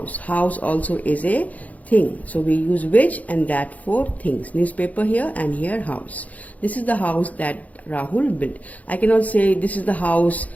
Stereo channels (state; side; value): late; right; 0.073 ms